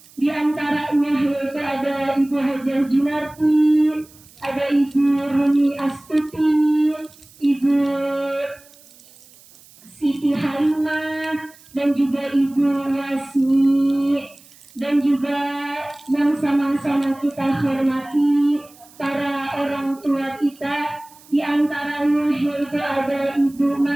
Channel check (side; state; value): right; noise; hiss, 25 dB below the sound